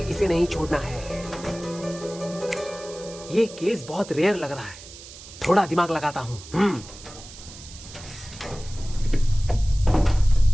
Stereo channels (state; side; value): noise; right; hiss, 16 dB below the sound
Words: इसे नहीं छोड़ना है। ये केस बहुत रेयर लग रहा है, थोड़ा दिमाग लगाता हूँ।